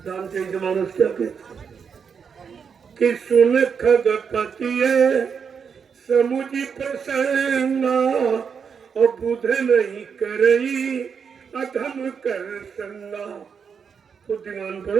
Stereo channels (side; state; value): left; quieter; 6.5 dB